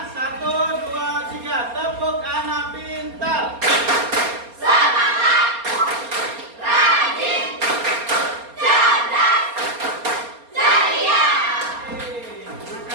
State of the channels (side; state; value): left; late; 4.3 ms